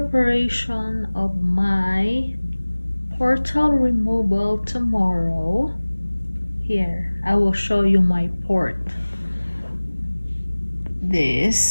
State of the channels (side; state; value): both; inverted; correlation -1.00